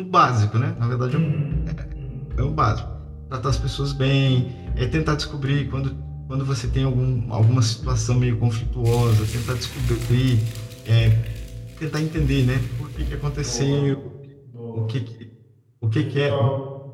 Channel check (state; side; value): identical; both; correlation 1.00